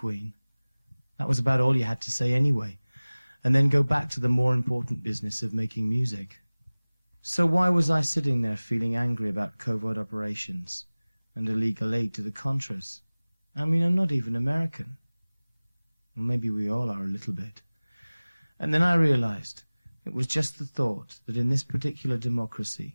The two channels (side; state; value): both; inverted; correlation -0.99